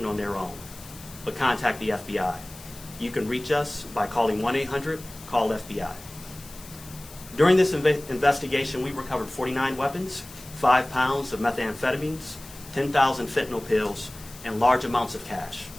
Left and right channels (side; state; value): left; noise; hiss, 18 dB below the sound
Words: on their own, but contact the FBI. You can reach us by calling 1-800-CALL-FBI. During this investigation, we recovered 49 weapons, 5 pounds of methamphetamines, 10,000 fentanyl pills, and large amounts of cash.